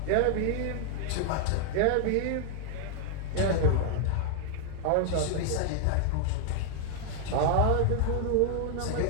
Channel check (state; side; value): different; both; correlation 0.00